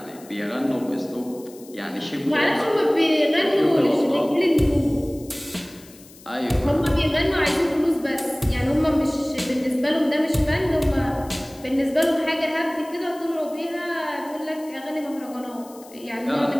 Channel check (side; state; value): left; noise; hiss, 22 dB below the sound